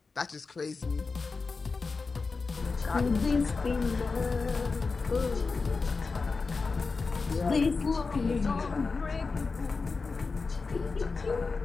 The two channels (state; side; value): quieter; right; 4.3 dB